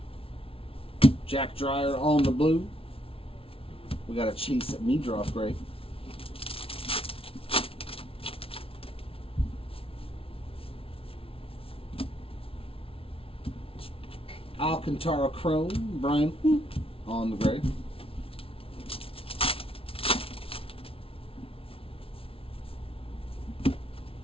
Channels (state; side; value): late; right; 0.26 ms